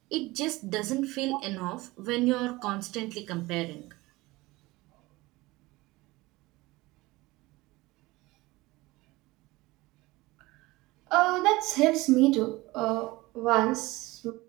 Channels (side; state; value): left; quieter; 20.7 dB